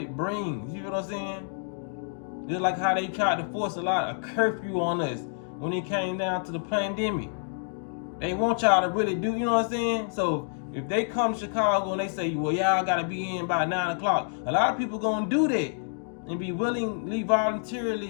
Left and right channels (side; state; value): right; silent; digital silence